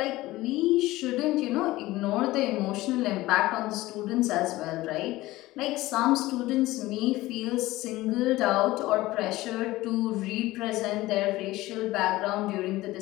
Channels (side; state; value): right; quieter; 18.0 dB